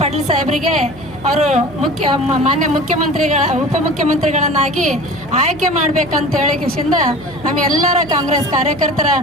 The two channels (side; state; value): right; noise; hum, 20 dB below the sound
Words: ಪಾಟೀಲ್ ಸಾಹೇಬರಿಗೆ ಅವರು ಮಾನ್ಯ ಉಪಮುಖ್ಯಮಂತ್ರಿಗಳನ್ನಾಗಿ ಆಯ್ಕೆ ಮಾಡ್ಬೇಕಂತ ಹೇಳಿಕಿಂದ ನಮ್ಮ ಎಲ್ಲರ ಕಾಂಗ್ರೆಸ್ ಕಾರ್ಯಕರ್ತರ